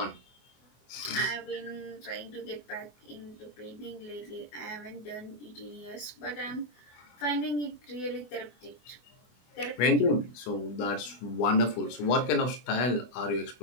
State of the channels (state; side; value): late; right; 24 ms